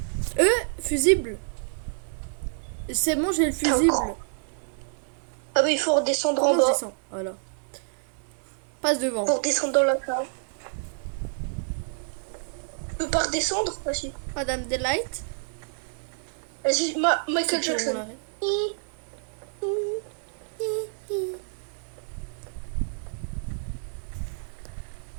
Fusible. C'est bon, j'ai le fusible. Ah bah il faut redescendre en Comment je bas. descends? Voilà. Passe devant. Pour descendre dans la cave. Tu peux pas redescendre? Vas-y. Madame Delight. Vas-y, Michael C'est bon, on Jackson. l'arrête.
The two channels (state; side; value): silent; left; digital silence